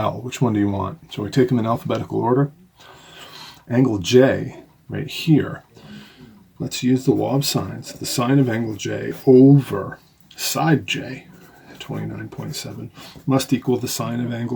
Which one do you want? So we take them in alphabetical order. Angle J, right here. Let's use the law of sines. The sine of angle J over side J, 29.7, must equal the sine of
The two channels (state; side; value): identical; both; correlation 1.00